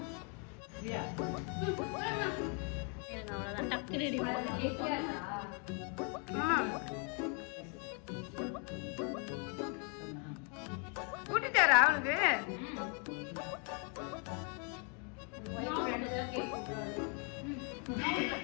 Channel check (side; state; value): right; quieter; 37.2 dB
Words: அவ்வளவுதான், டக்கு ரெடி கூட்டிட்டாரா அவனுக்கு?